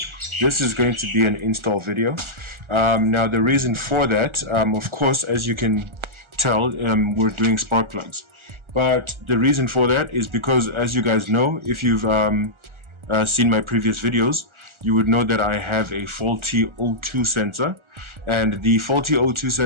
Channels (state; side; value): late; left; 1.4 ms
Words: this is going to be an install video. Now the reason for that, of course, as you can tell, we're doing spark plugs. But the reason for that is because, as you guys know, if you've seen my previous videos, you would know that I have a faulty O2 sensor, and the faulty O2